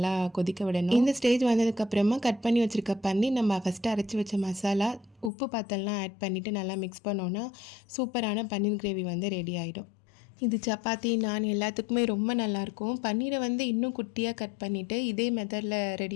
கொதிக்க விடணும். இந்த ஸ்டேஜ் வந்ததுக்கப்புறமா கட் பண்ணி வச்சுருக்க பண்ணி நம்ம ஃபஸ்ட்டு அரைச்சி வச்ச மசாலா, உப்பு பாத்தெல்லாம் ஆட் பண்ணிவிட்டு நல்லா மிக்ஸ் பண்ணோன்னா சூப்பரான பன்னீர் கிரேவி வந்து ரெடி ஆகிடும். இது சப்பாத்தி, நான் எல்லாத்துக்குமே ரொம்ப நல்லாயிருக்கும். பன்னீரை வந்து இன்னும் குட்டியாக கட் பண்ணிவிட்டு இதே மெத்தடில்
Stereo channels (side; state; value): right; drops out; at 5.3 s